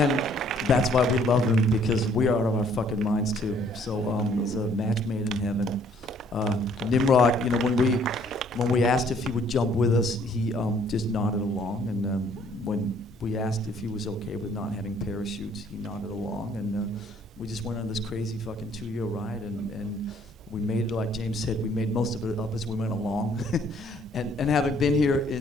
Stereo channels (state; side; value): normal; both; correlation 0.62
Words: that's why we love him, because we are out of our fucking minds too. So it's a match made in heaven. Nimrod, when we asked if he would jump with us, he just nodded along, and when we asked if he was okay with not having parachutes, he nodded along, and we just went on this crazy fucking 2-year ride, and we made it, like James said, we made most of it up as we went along. and having been here